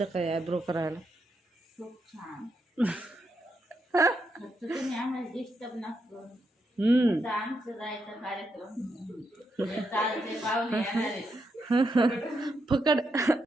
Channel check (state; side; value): normal; both; correlation 0.81